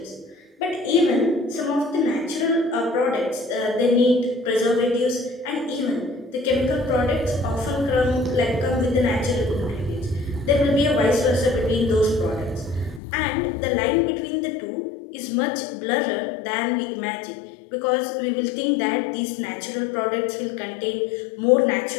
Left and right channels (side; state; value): right; drops out; at 13.0 s